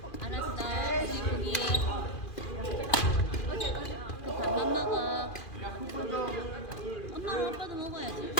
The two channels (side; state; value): right; late; 2.4 ms